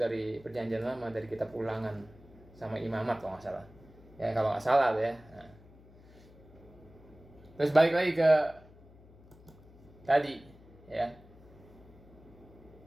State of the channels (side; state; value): left; noise; hum, 23 dB below the sound